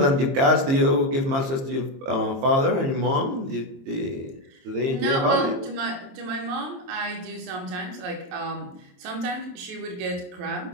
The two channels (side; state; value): left; late; 22 ms